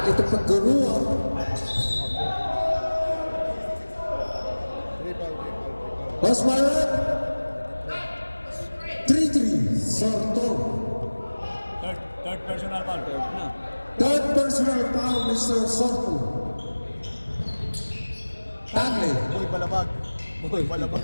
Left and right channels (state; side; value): inverted; both; correlation -1.00